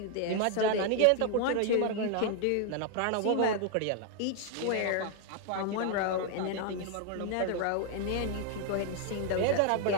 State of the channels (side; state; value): both; different; correlation 0.00